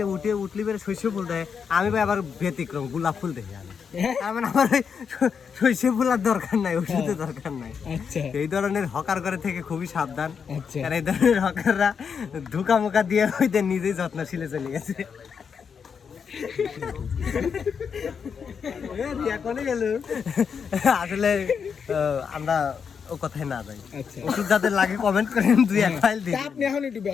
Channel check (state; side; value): quieter; right; 6.5 dB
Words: উঠলি বেড়ে শস্য ফুল দেয়, আমি ভাই আবার ব্যতিক্রম গোলাপ ফুল দেখি আমি। তার মানে আমার ওই শস্য ফুল আর দরকার নাই, ওষুধের দরকার নাই। আচ্ছা এই ধরনের হকার করে থেকে খুবই সাবধান, আচ্ছা কারণ এই ধরনের হকাররা ধোকা মোকা দিয়ে হইতে নিজেই যত্নশীলে চলে গেছে। আসলে আমরা ও কথায় না যাই। আচ্ছা ওষুধ যাদের লাগে কমেন্ট করেন, 2-1 ফাইল দিন। তা আপনি এখন একটু